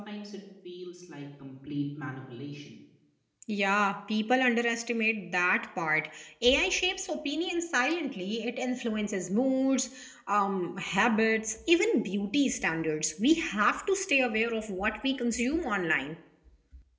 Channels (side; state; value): both; identical; correlation 1.00